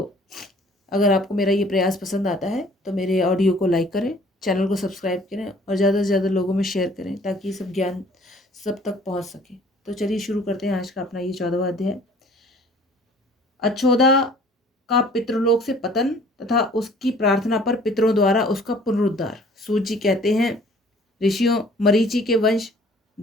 अगर आपको मेरा ये प्रयास पसंद आता है तो मेरे ऑडियो को लाइक करें, चैनल को सब्सक्राइब करें और ज़्यादा से ज़्यादा लोगों में शेयर करें ताकि सब ज्ञान सब तक पहुंच सके। तो चलिए शुरू करते हैं आज का अपना ये 14वां अध्याय। अचोदा का पितृलोक से पतन तथा उसकी प्रार्थना पर पितरों द्वारा उसका पुनरुद्धार। सूत जी कहते हैं, ऋषियों मरीचि के वंश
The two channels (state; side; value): normal; both; correlation 0.53